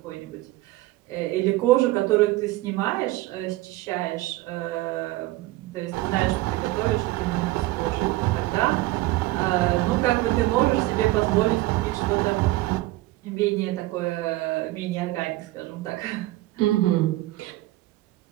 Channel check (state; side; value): quieter; left; 18.4 dB